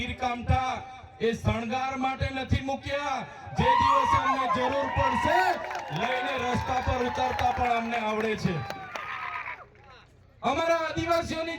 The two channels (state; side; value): identical; both; correlation 1.00